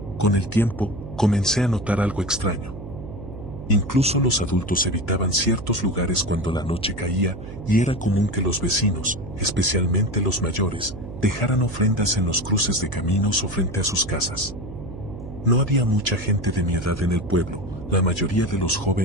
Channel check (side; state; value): right; noise; hum, 11 dB below the sound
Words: con el tiempo, comencé a notar algo extraño. Incluso los adultos evitaban ciertos lugares cuando la noche caía, y era común que los vecinos, especialmente los mayores, dejaran ofrendas en los cruces de caminos o frente a sus casas. No había mucha gente de mi edad en el pueblo. La mayoría de los